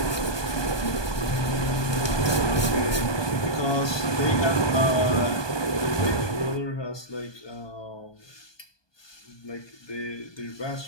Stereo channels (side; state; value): right; late; 1.2 ms